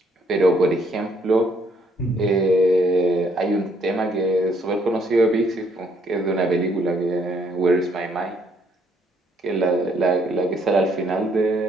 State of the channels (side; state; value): both; normal; correlation 0.68